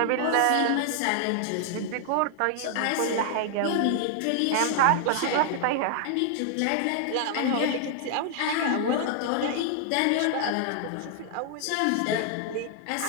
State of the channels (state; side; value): different; both; correlation 0.00